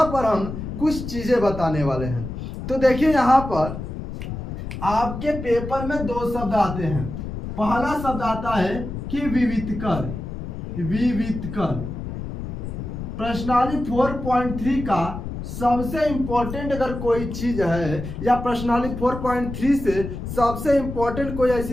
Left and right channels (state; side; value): noise; left; rumble, 7 dB below the sound